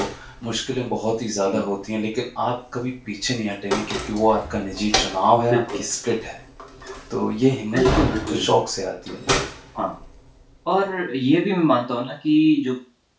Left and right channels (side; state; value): both; identical; correlation 1.00